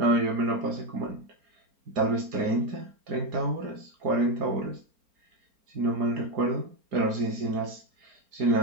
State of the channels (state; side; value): late; left; 4.3 ms